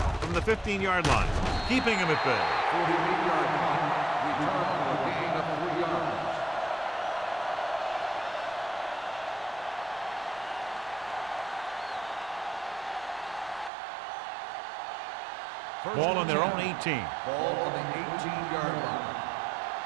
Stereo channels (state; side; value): drops out; left; at 13.7 s